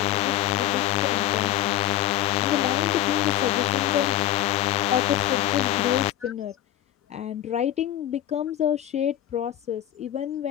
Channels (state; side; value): quieter; right; 13.2 dB